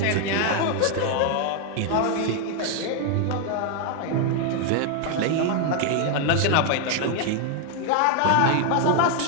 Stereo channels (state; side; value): different; both; correlation 0.00